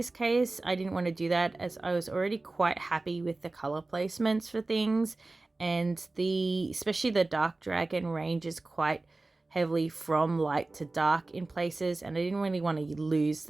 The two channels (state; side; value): quieter; left; 3.2 dB